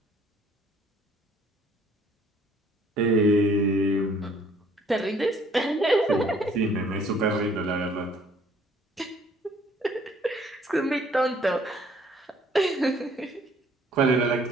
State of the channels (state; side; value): normal; both; correlation 0.59